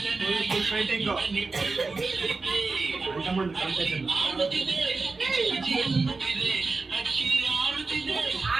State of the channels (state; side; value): quieter; left; 3.9 dB